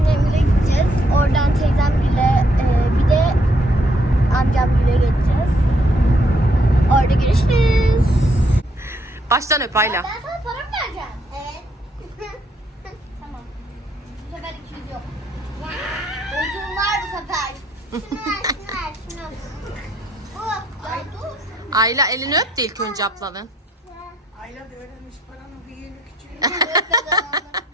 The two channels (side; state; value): both; normal; correlation 0.70